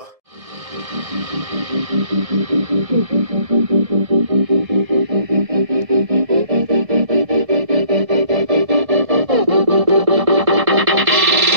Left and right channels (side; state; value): left; late; 1.7 ms